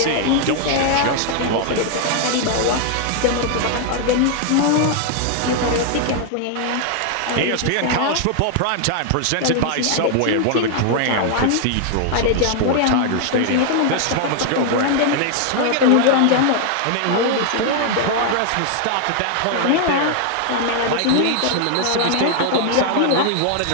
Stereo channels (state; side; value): different; both; correlation 0.00